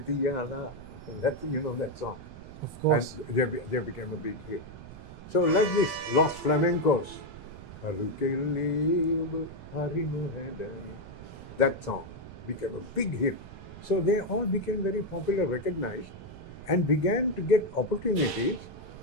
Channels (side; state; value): right; noise; rumble, 16 dB below the sound